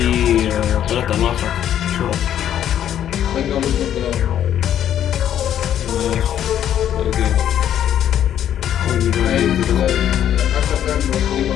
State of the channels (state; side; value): quieter; right; 10.5 dB